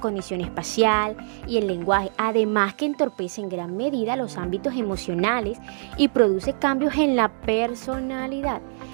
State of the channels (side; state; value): left; silent; 63 dB below the other